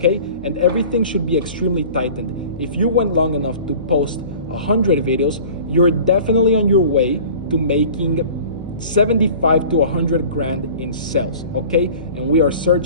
And everything should be extremely tightened. If you went long enough to post 100 videos, you're definitely on your way to making 75 to 100 grand in sales, okay? And we are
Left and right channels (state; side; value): inverted; both; correlation -0.43